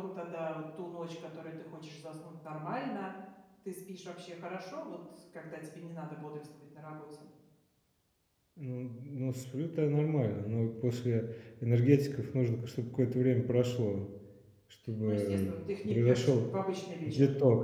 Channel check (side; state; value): both; identical; correlation 1.00